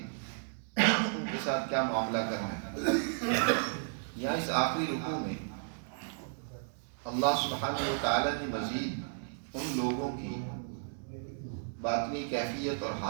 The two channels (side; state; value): left; silent; digital silence